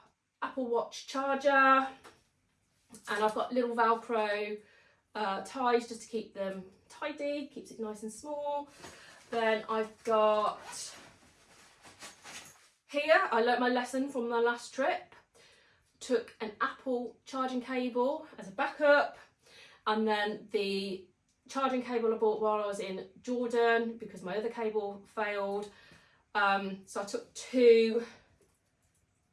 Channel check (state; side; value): identical; both; correlation 1.00